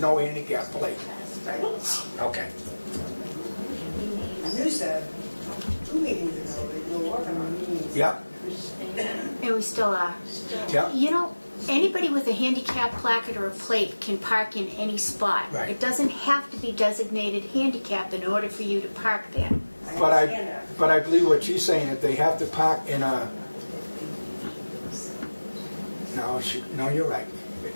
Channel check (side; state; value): both; inverted; correlation -1.00